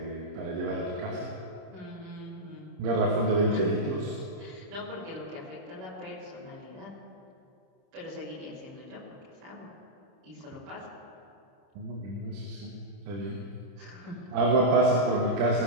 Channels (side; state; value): left; late; 30 ms